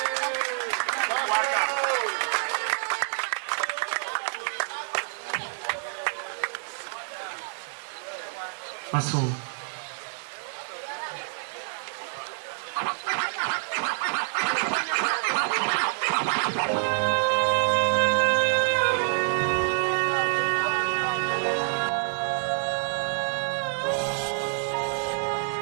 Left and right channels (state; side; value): silent; left; digital silence